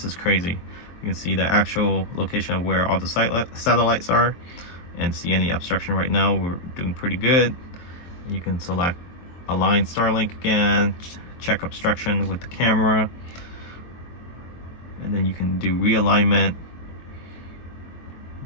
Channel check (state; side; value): late; right; 23 ms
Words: is crazy. You can see the actual location of where all the satellites are and see any obstruction right now. We're doing pretty good. You can select align Starlink again, check obstruction with the camera, and then you can do realignment.